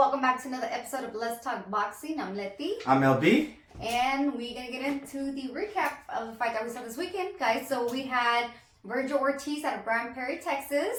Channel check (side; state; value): both; identical; correlation 1.00